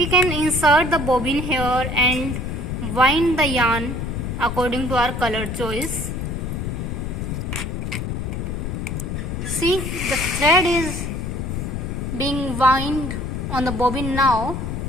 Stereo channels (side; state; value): left; noise; rumble, 3 dB below the sound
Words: can insert the bobbin here and wind the yarn according to our color choice. See, the thread is being wound on the bobbin now.